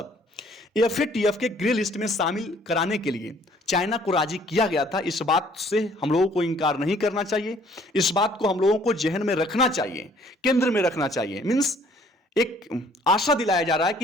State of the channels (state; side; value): normal; both; correlation 0.59